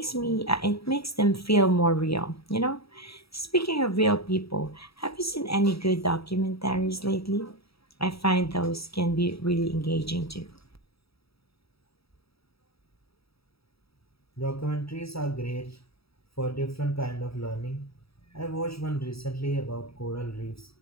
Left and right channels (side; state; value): right; late; 0.77 ms